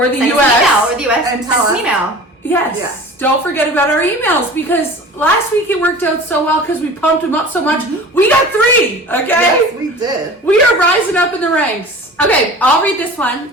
the US, and tell us. An email. Yes. Don't forget about our emails, because last week it worked out so well because we pumped them up so much. We got 3, okay? Yes, we did. We are rising up in the ranks. Okay, I'll read this one.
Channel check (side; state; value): both; normal; correlation 0.40